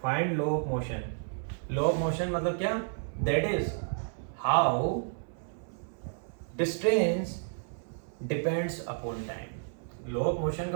Find low of motion. Low of motion मतलब क्या, that is how distance depends upon time. Low of motion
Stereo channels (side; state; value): left; silent; 57 dB below the other